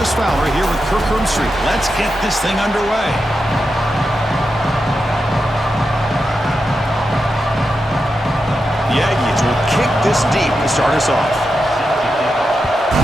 Fowler here with Kirk Street. Let's get this thing underway. The Aggies will kick this deep to start us off.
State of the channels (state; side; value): normal; both; correlation 0.88